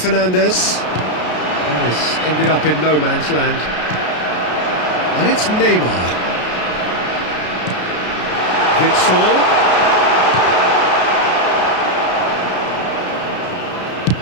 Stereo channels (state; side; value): late; right; 33 ms